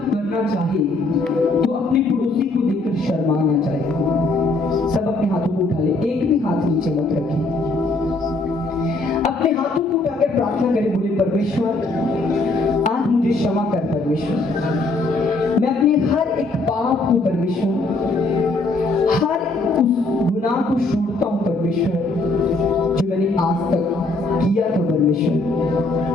करना चाहे तो अपने पड़ोसी को देखकर शर्मा ना चाहे। सब अपने हाथों को उठा ले, एक भी हाथ नीचे मत रखें। अपने हाथों को उठाकर प्रार्थना करें, बोले परमेश्वर आज मुझे क्षमा कर परमेश्वर, मैं अपने हर एक पाप को परमेश्वर, हर उस गुनाह को छोड़ता हूं परमेश्वर जो मैंने आज तक किया था परमेश्वर।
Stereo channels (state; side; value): quieter; right; 3.2 dB